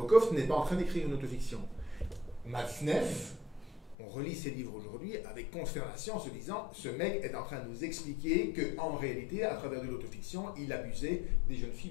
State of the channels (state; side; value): drops out; right; at 4.0 s